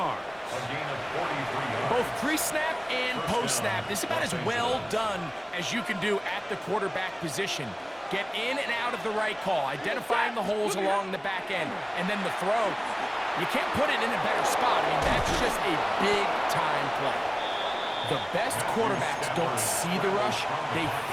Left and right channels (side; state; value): both; identical; correlation 1.00